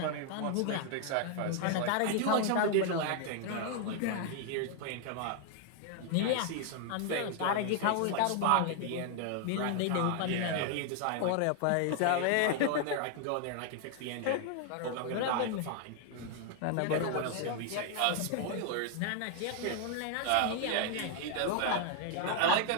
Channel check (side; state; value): both; different; correlation 0.00